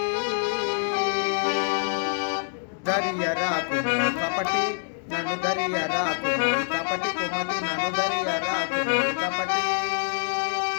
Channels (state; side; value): silent; right; 61 dB below the other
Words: దరియరాకుము కపటి నన్ను దరియరాకుము కపటి కుమతి నన్ను దరియరాకుము కపటి